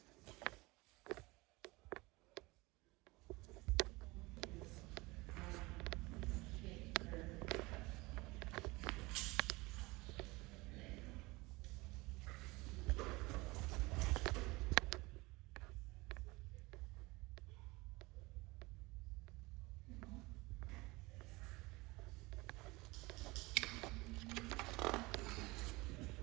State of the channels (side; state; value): left; quieter; 22.8 dB